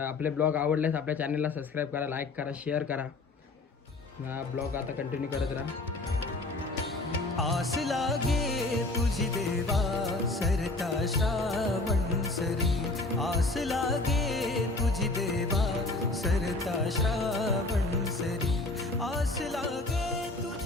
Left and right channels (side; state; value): right; quieter; 3.1 dB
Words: आपले ब्लॉग आवडल्यास आपल्या चॅनलला सबस्क्राईब करा, लाईक करा, शेअर करा. ब्लॉग आता कंटिन्यू करत राहा. आस लागे तुझी देवा सरता श्रावण सरी, आस लागे तुझी देवा सरता श्रावण सरी, आस लागे